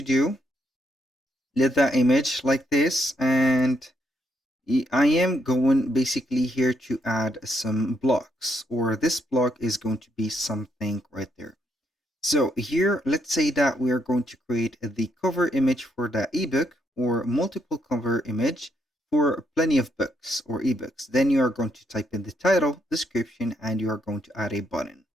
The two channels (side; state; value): both; normal; correlation 0.76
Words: do? Let that image like this, and I am going basically here to add some blocks, or this block is going to be something right there. So here, let's say that we are going to create the cover image for the ebook, or multiple cover image for plenty of books or ebooks. Then you are going to type in the title, description, and you are going to add a button.